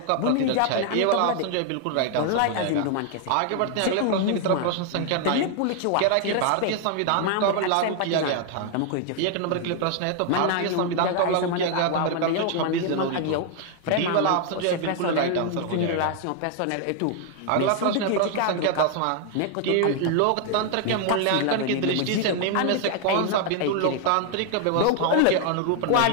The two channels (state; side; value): different; both; correlation 0.00